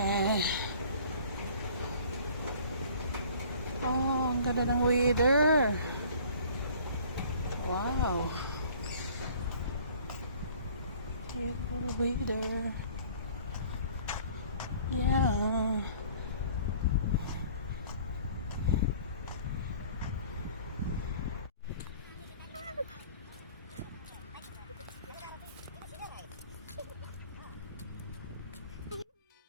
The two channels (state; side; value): inverted; both; correlation -0.51